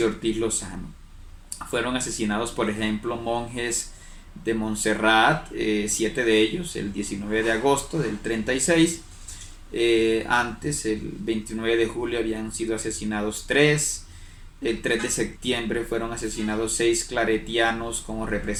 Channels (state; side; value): identical; both; correlation 1.00